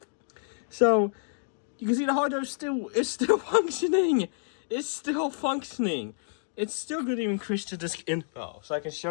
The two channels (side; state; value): right; silent; digital silence